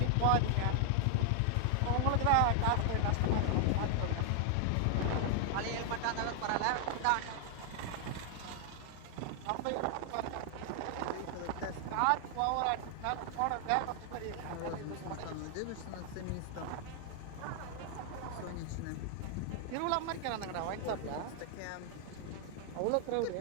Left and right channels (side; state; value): both; different; correlation 0.00